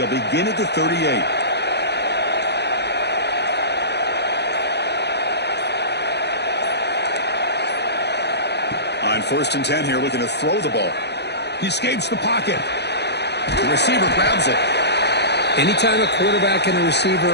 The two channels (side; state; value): right; late; 0.49 ms